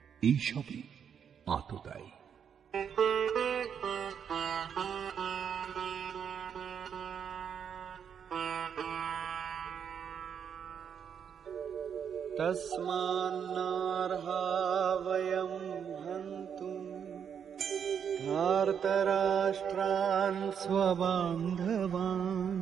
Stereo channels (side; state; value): left; quieter; 7.7 dB